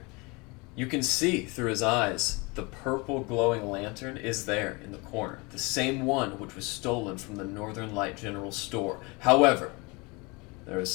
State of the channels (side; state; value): right; quieter; 27.3 dB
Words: You can see through his eyes the purple glowing lantern is there in the corner, the same one which was stolen from the Northern Light General Store. However, there is